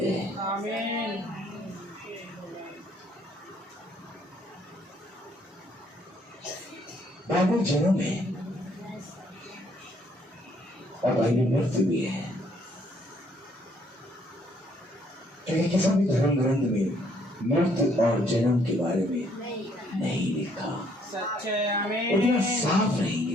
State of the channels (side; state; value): both; normal; correlation 0.66